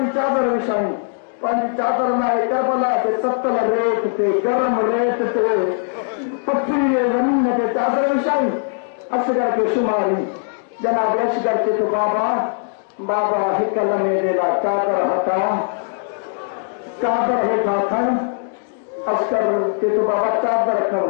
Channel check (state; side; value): silent; right; digital silence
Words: चादर विछाई पंहिंजी चादर लाइ करबला ते ततल रेत ते गरम रेत ते पथरी ज़मीन ते चादर विछाई असगर के शुमारी जनाब असगर के तो बाबा बाबा हिक लम्हे जे लाइ चादर हटा चादर हेठा खण असगर के तो बाबा चादर खण